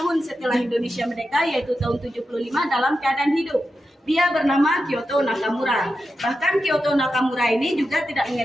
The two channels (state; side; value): normal; both; correlation 0.89